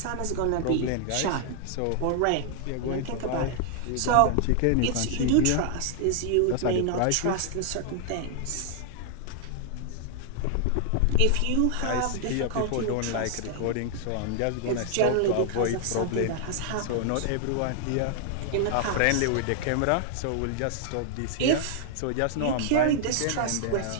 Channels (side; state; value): both; different; correlation 0.00